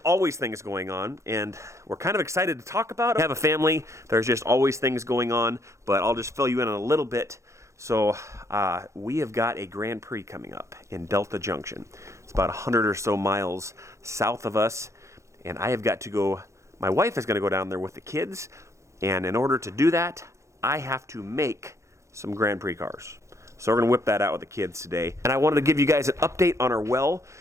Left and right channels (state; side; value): late; left; 0.14 ms